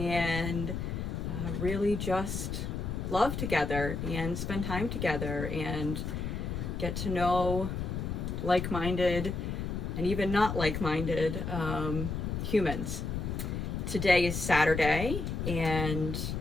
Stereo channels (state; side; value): noise; left; rumble, 3 dB below the sound